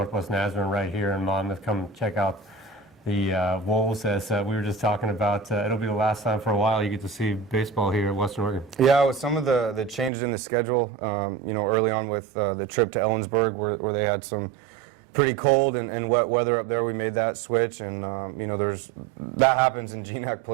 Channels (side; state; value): left; drops out; at 10.1 s